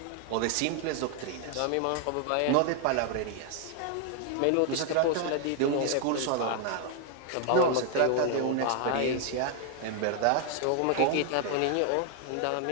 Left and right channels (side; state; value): both; different; correlation 0.00